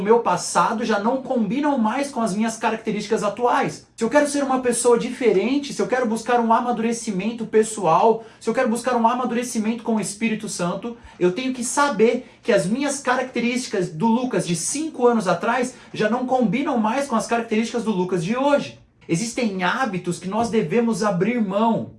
meu passado já não combinam mais com as minhas características atuais. Se eu quero ser uma pessoa diferente, se eu quero buscar um amadurecimento pessoal, se eu quero buscar um amadurecimento com o Espírito Santo, eu tenho que saber que as minhas características do Lucas de 5 anos atrás já não combinam mais com as características do Lucas de hoje. Existem hábitos que nós devemos abrir mão.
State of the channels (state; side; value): identical; both; correlation 1.00